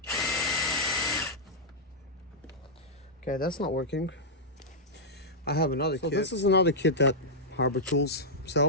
Okay, that's not working. I have another kit. This is another kit that Harbor Tools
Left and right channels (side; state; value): both; normal; correlation -0.08